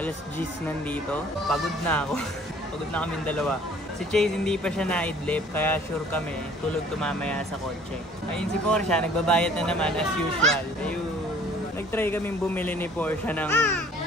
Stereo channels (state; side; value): normal; both; correlation 0.54